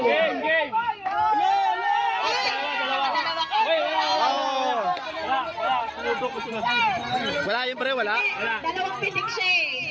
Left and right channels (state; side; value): identical; both; correlation 1.00